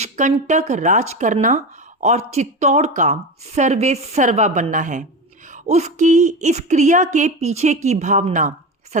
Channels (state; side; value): normal; both; correlation 0.23